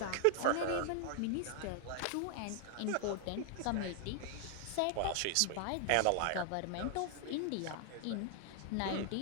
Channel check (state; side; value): different; both; correlation 0.00